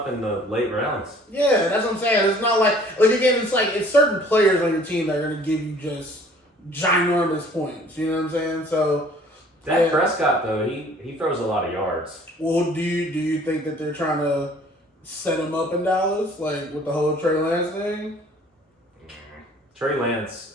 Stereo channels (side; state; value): both; normal; correlation 0.54